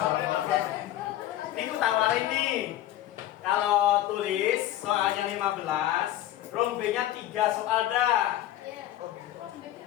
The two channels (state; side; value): quieter; right; 13.5 dB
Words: Ini aku tawarin nih. Kalau tulis soalnya 15, rombenya 3 soal dah.